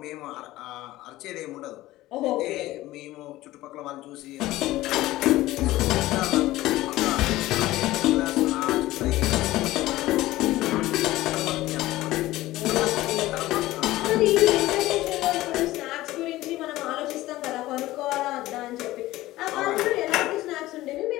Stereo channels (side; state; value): right; quieter; 16.9 dB